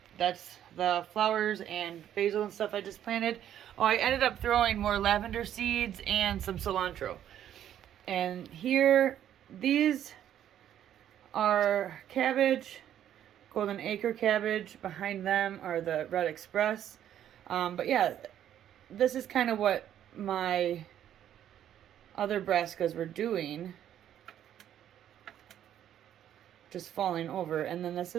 that's the flowers and basil and stuff I just planted. Oh, I ended up throwing more lavender seeds and some cilantro. And here, these are cabbage, Golden Acre cabbage. Behind them are the Red Express. But yeah, this is kind of what my other brassicas were doing. Just falling over. And then this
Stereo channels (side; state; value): left; quieter; 10.7 dB